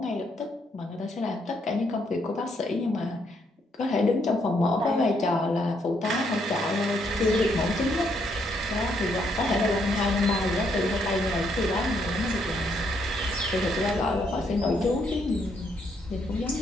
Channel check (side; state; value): both; normal; correlation 0.73